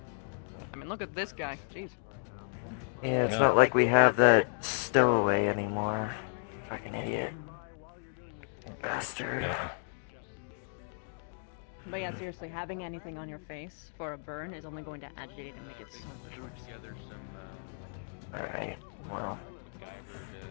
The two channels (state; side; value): silent; right; digital silence